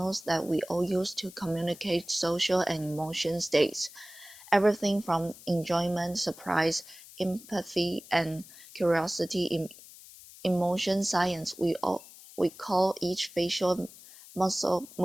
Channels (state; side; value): noise; left; hiss, 19 dB below the sound